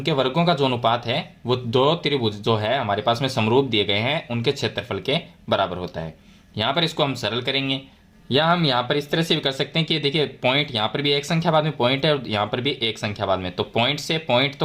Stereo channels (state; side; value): identical; both; correlation 1.00